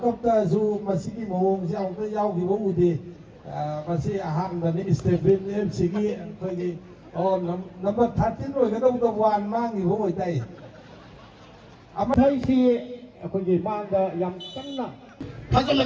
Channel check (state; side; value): identical; both; correlation 1.00